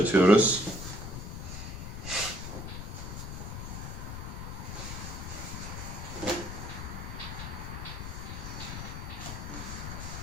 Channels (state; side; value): noise; left; rumble, 6 dB below the sound